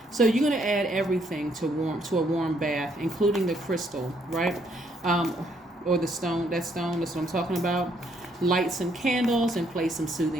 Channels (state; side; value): normal; both; correlation 0.70